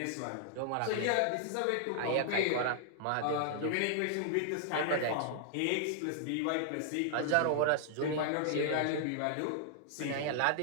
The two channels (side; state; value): both; different; correlation -0.01